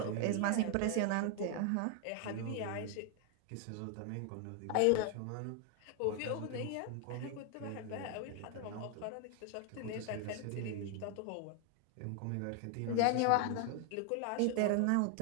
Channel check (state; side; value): different; both; correlation 0.01